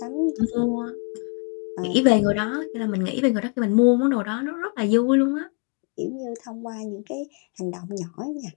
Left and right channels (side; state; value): right; quieter; 34.4 dB